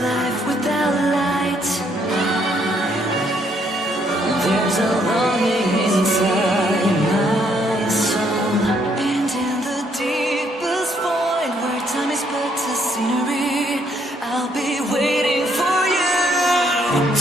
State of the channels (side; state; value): both; normal; correlation 0.70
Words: without light. There's a longing inside my soul, and in the deepest void where time is but a scenery, I'll be waiting for you,